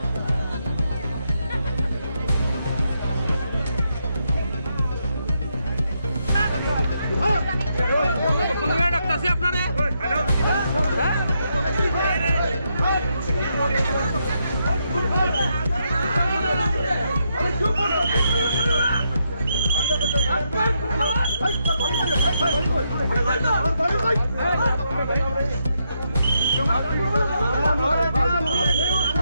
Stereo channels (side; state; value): both; inverted; correlation -0.80